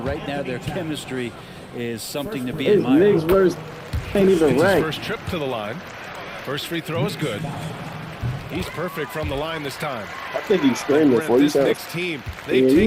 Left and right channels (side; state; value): both; identical; correlation 1.00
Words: Right now, their chemistry is something to be It's admired. Knicks versus ain't even It's his ranked. first trip to the line. First free throw is good. He's perfect from the line this time. I think he's screaming Grant, for you. this Knicks team, Yeah, they've